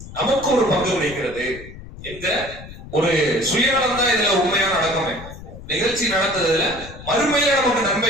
நமக்கு ஒரு பங்கு கிடைக்கிறது என்கிற ஒரு சுயநலம் தான் இதுல உண்மையா நடக்குமே. நிகழ்ச்சி நடந்ததுல மறுமையில நமக்கு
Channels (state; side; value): noise; left; rumble, 15 dB below the sound